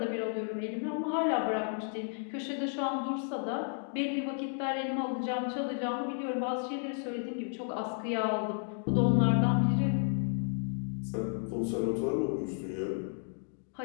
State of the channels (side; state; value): right; silent; 56 dB below the other